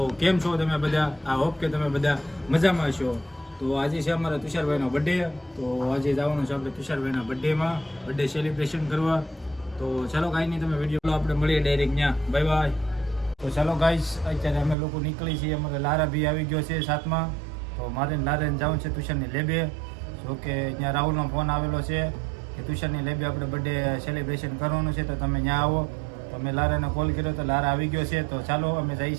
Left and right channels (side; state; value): left; drops out; at 14.8 s